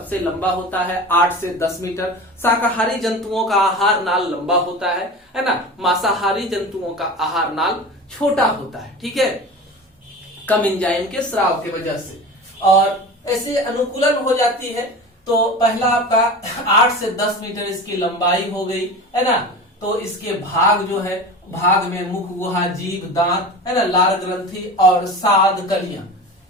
लंबा होता है 8 से 10 मीटर। शाकाहारी जंतुओं का आहार नाल लंबा होता है ना। मांसाहारी जंतुओं का आहार नाल छोटा होता है, ठीक है, कम एंजाइम के स्राव की वजह से, और ऐसे अनुकूलन हो जाती है। तो पहला आपका 8 से 10 मीटर इसकी लंबाई हो गई, है ना। तो इसके भाग जो है, भाग में मुख गुहा, जीभ, दांत, है ना, लार ग्रंथि और साद कलियां,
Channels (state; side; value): normal; both; correlation 0.32